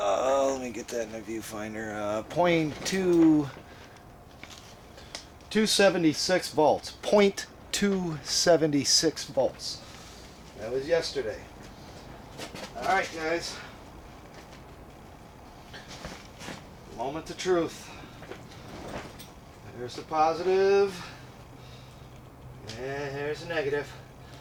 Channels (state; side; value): identical; both; correlation 1.00